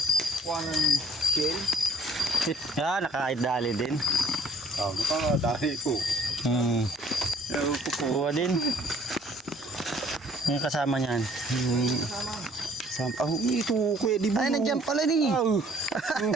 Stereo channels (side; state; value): both; normal; correlation 0.58